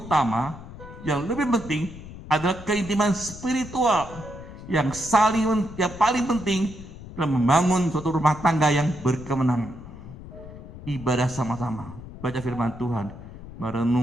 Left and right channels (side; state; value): left; noise; rumble, 14 dB below the sound